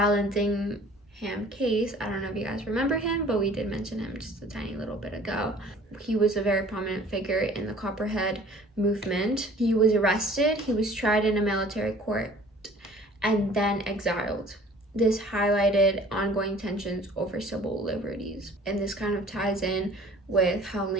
case, I don't know if you guys remember him, but we did mention him just a tiny little bit ago. He was a very prominent figure in the Copperhead movement. He was arrested, he was tried in a military court, and then exiled. This highlighted ongoing tensions over civil liberties. And this kind of ties in with how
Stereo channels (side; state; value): both; normal; correlation 0.50